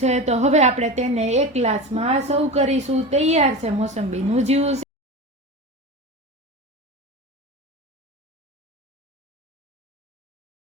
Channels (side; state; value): both; normal; correlation 0.27